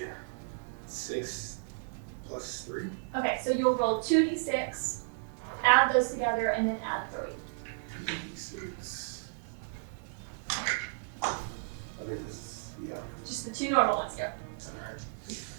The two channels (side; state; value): left; silent; 56 dB below the other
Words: plus 3. Okay, so you'll roll 2d6, add those together, and then add 3. 2d6. I think this is, yeah. Just the 2 normal ones, go. Alright.